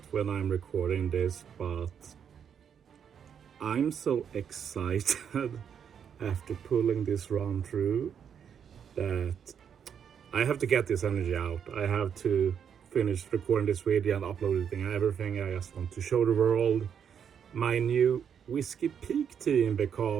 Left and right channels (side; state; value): left; quieter; 7.9 dB